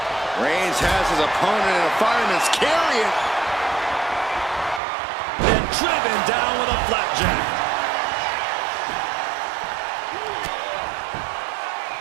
Reigns has his opponent in a fireman's carry. And driven down with a flapjack.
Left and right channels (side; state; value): left; drops out; at 4.8 s